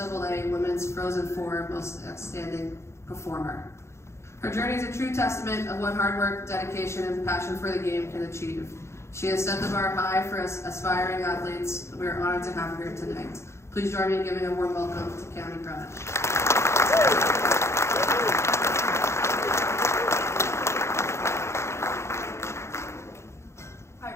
Women's Frozen Four Most Outstanding Performer. Her journey is a true testament of what hard work, dedication, and passion for the game can achieve. She has set the bar high for us aspiring athletes. We are honored to have her here tonight. Please join me in giving a warm welcome to Cami Cronish.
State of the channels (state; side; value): late; right; 0.13 ms